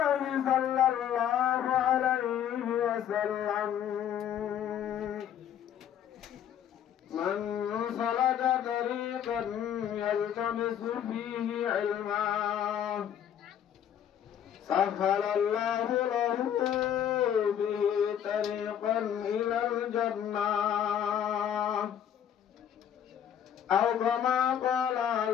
صلى الله عليه وسلم من سلك طريقا يلتمس فيه علما سهل الله له به طريقا إلى الجنة أو كما قال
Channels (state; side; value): quieter; right; 9.6 dB